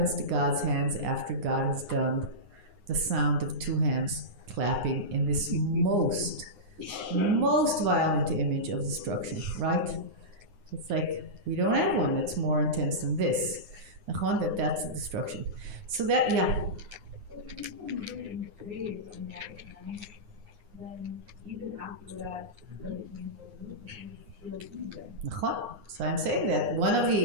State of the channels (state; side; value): late; left; 9.7 ms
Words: to God's hands after God has done the sound of two hands clapping in this most violent image of destruction, right? It's like, we don't have one that's more intense than this. That's the destruction. So that, yeah. Then even after that, So I'm saying that one of